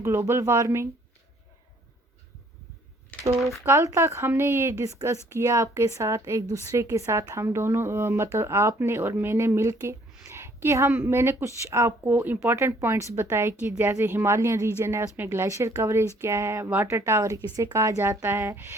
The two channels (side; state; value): both; normal; correlation 0.61